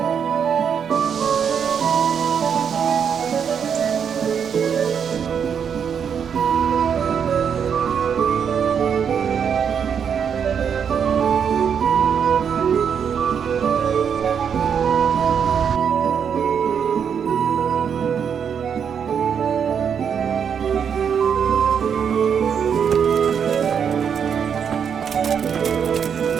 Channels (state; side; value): quieter; left; 7.4 dB